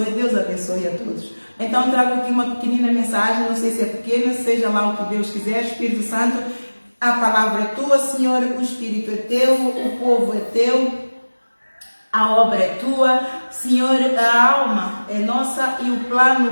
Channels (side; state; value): both; inverted; correlation -1.00